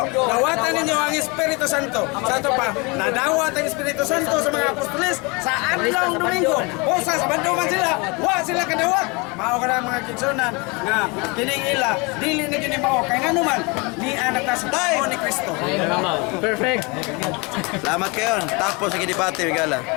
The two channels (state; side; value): quieter; right; 28.4 dB